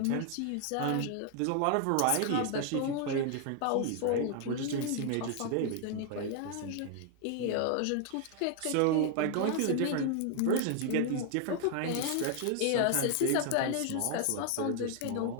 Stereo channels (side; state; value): both; different; correlation 0.00